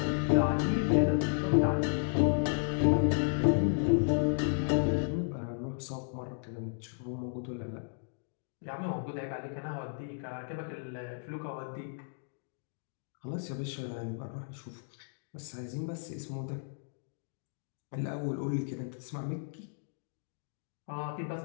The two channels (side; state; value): right; silent; digital silence